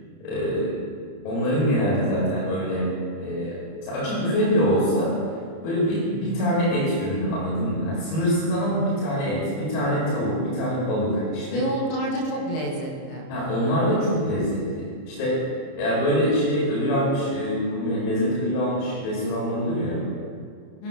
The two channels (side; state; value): right; late; 30 ms